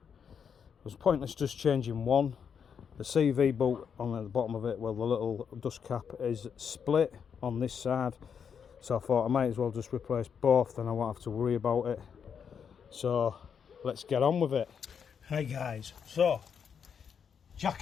was pointless just changing one. The CV bolt on the bottom of it, well, the little dust cap is split on this side, so I thought I might as well just replace both, then I won't have to worry about it. So let's get on with it. Hi guys, so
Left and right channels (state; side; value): quieter; right; 7.1 dB